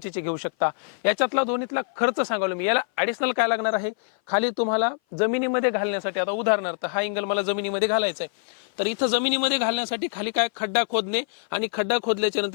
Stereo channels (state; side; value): silent; right; 57 dB below the other